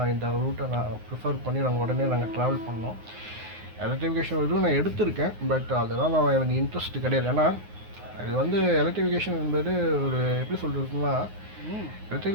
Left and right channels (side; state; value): left; late; 9.6 ms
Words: இந்த ரூட்டை நான் ப்ரிஃபர் பண்ணி நாங்கள் ட்ராவல் பண்ணோம். எலக்ட்ரிஃபிகேஷன் இதுவும் நான் எடுத்திருக்கேன். பட் அதெல்லாம் எனக்கு இன்ட்ரெஸ்ட் கிடையாது. ஏன்னா இது எலக்ட்ரிஃபிகேஷன் என்பது ஒரு எப்படி சொல்கிறதுன்னா,